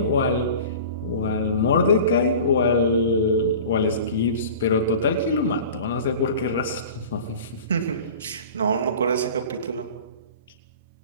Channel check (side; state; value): both; inverted; correlation -0.39